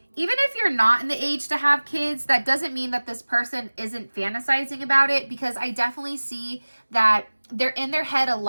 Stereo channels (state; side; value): inverted; both; correlation -1.00